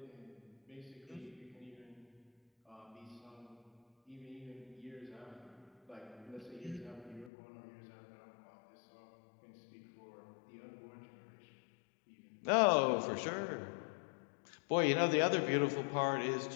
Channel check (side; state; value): right; drops out; at 7.3 s